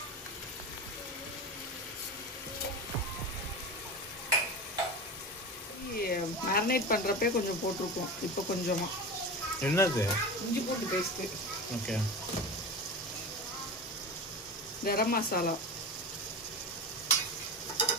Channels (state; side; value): normal; both; correlation 0.26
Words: மேரினேட் பண்ணுறப்பே கொஞ்சம் போட்டிருக்கோம். இப்போ கொஞ்சமாக. என்னது? இஞ்சி பூண்டு பேஸ்ட்டு. ஓகே. கரம் மசாலா.